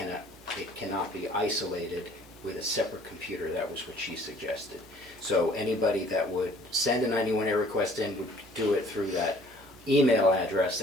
it cannot be isolated with a separate computer. That was what she suggested. So anybody that would send a 91A request in would do it through that email address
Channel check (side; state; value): both; normal; correlation 0.54